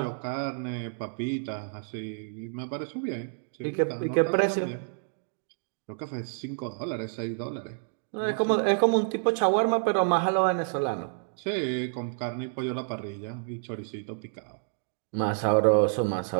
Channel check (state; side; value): silent; left; digital silence